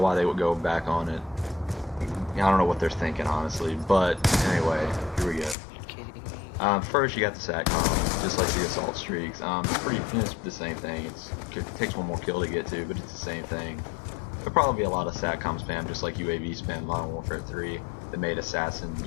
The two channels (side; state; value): right; drops out; at 5.6 s